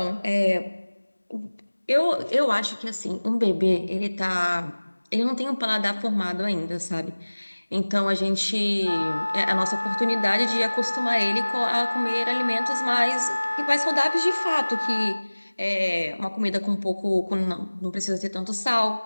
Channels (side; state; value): both; inverted; correlation -1.00